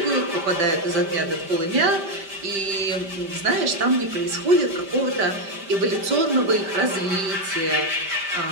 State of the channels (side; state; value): left; late; 5.1 ms